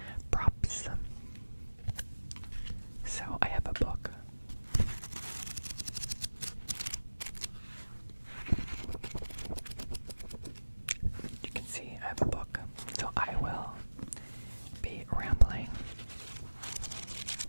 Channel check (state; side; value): inverted; both; correlation -1.00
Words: props. So I have a book. You can see I have a book. So I will be rambling